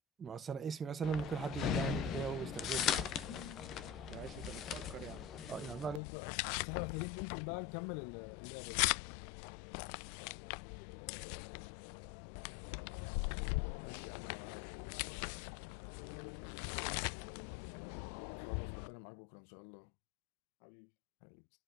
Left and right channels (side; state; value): right; drops out; at 6.0 s